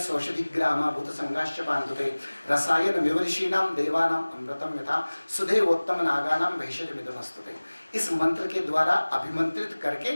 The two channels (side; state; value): both; inverted; correlation -1.00